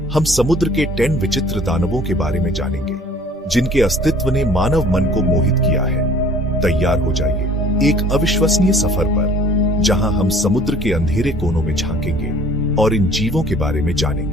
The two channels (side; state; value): both; normal; correlation 0.52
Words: हम समुद्र के 10 विचित्र दानवों के बारे में जानेंगे, जिनके अस्तित्व ने मानव मन को मोहित किया है। तैयार हो जाइए एक अविश्वसनीय सफर पर, जहां हम समुद्र के अंधेरे कोनों में झांकेंगे और इन जीवों के बारे में